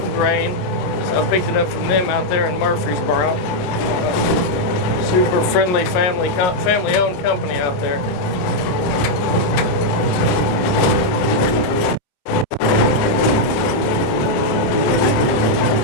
grain. So I picked it up from them out there in Murfreesboro. Super friendly family-owned company out there.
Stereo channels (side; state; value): right; late; 27 ms